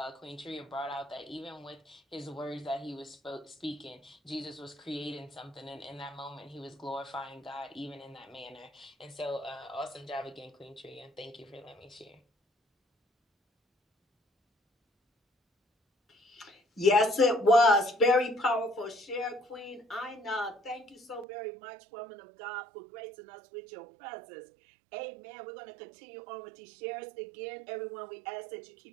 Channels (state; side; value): drops out; left; at 21.2 s